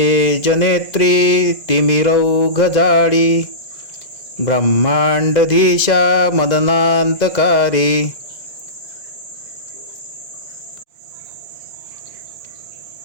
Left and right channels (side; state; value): right; late; 2.0 ms